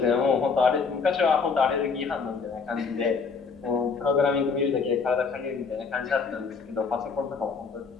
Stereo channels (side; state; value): right; quieter; 5.1 dB